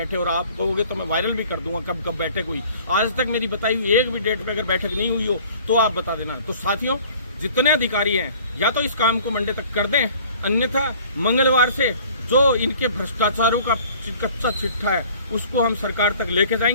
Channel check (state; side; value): inverted; both; correlation -0.51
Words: और आप कहोगे तो मैं वायरल भी कर दूंगा कब कब बैठक हुई। आज तक मेरी बताई हुई एक भी डेट पे अगर बैठक नहीं हुई हो तो आप बता देना। तो साथियों, जितने अधिकारी हैं या तो इस काम को मंडे तक कर दें, अन्यथा मंगलवार से जो इनके भ्रष्टाचारों का कच्चा चिट्ठा है उसको हम सरकार तक लेके